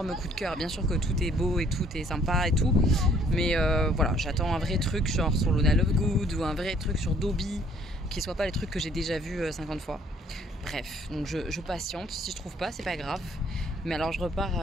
coup de cœur. Bien sûr que tout est beau et tout est sympa et tout. Mais voilà, j'attends un vrai truc genre sur Luna Lovegood ou un vrai truc sur Dobby qui soit pas les trucs que j'ai déjà vus 50 fois. Bref, donc je patiente. Si je trouve pas, c'est pas grave. Mais alors je repars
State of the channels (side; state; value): both; normal; correlation 0.61